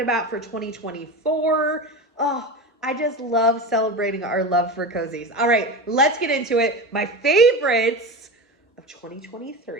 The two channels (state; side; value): normal; both; correlation 0.25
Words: for 2024. Oh, I just love celebrating our love for cozies. All right, let's get into it. My favorites of